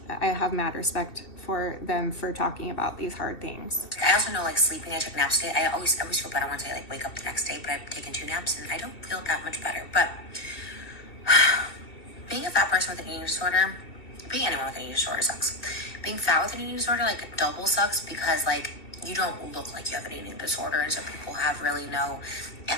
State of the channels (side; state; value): right; late; 2.7 ms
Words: I have mad respect for them for talking about these hard things. I also know, like, sleeping, I took naps today. I always feel better once I like wake up the next day, but I've taken 2 naps and I don't feel that much better. But being a fat person with an eating disorder, being anyone with an eating disorder sucks. Being fat with an eating disorder, like, double sucks, because like you don't look like you have an eating disorder, and so people have really no